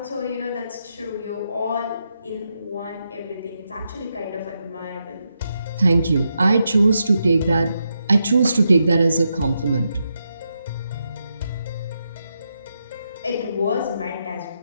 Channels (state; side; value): inverted; both; correlation -0.84